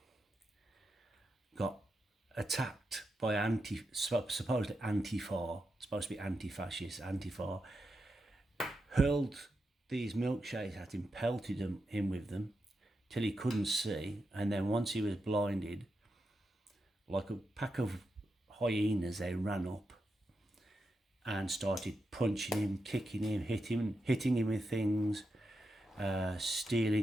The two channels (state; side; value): normal; both; correlation 0.87